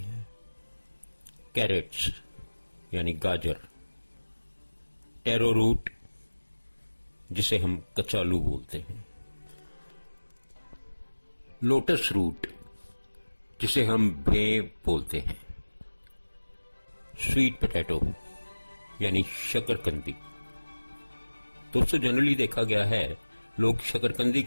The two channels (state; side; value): inverted; both; correlation -1.00